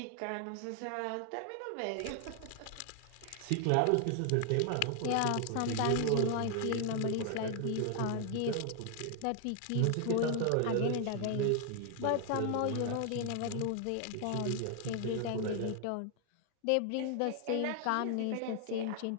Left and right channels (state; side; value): different; both; correlation 0.00